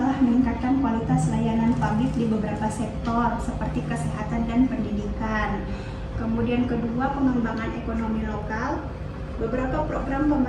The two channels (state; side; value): identical; both; correlation 1.00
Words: meningkatkan kualitas layanan publik di beberapa sektor seperti kesehatan dan pendidikan. Kemudian kedua, pengembangan ekonomi lokal. Beberapa program